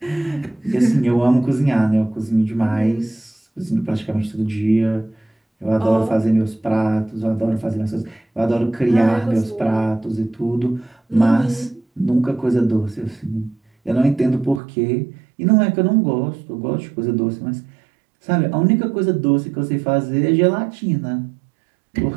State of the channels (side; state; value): left; drops out; at 14.6 s